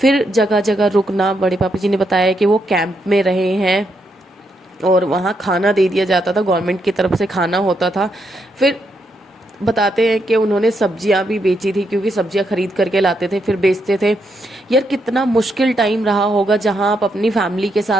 जगह जगह रुकना। बड़े पापा जी ने बताया कि वो कैंप में रहे हैं और वहाँ खाना दे दिया जाता था, गवर्नमेंट की तरफ से खाना होता था। फिर बताते हैं कि उन्होंने सब्जियां भी बेची थी, क्योंकि सब्जियां खरीद करके लाते थे फिर बेचते थे। यार कितना मुश्किल टाइम रहा होगा जहां आप अपनी फैमिली के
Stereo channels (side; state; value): both; normal; correlation 0.79